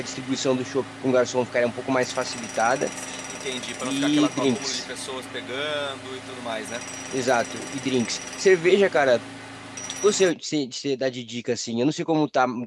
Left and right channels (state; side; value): identical; both; correlation 1.00